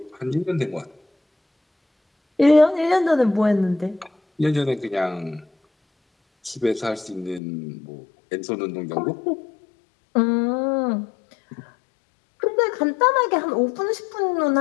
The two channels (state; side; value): drops out; right; at 7.4 s